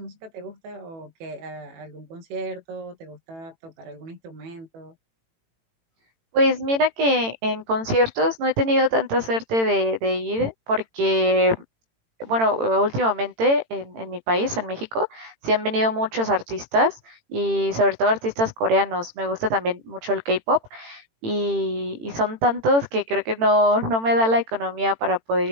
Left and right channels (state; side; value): late; left; 18 ms